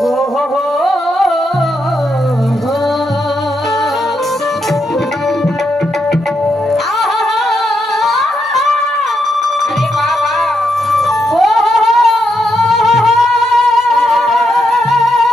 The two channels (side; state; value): both; normal; correlation 0.81